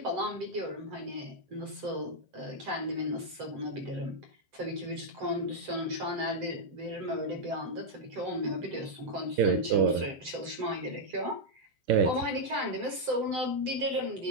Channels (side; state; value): left; late; 7.8 ms